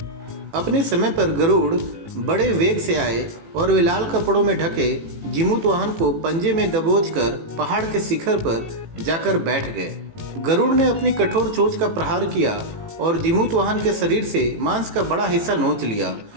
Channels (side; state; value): left; late; 18 ms